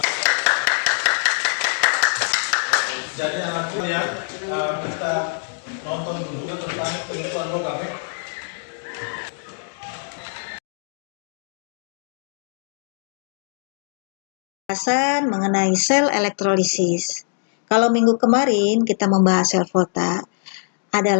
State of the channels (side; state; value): right; silent; digital silence